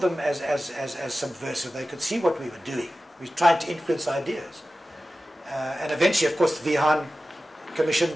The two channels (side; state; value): both; normal; correlation 0.95